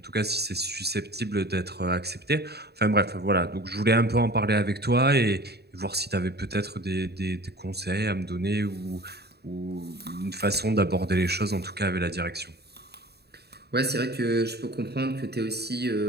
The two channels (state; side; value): late; left; 0.47 ms